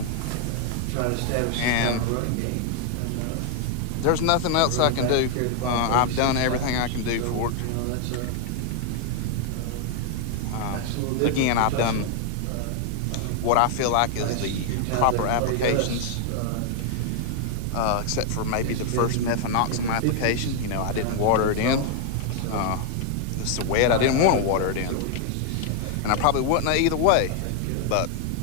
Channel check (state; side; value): different; both; correlation 0.00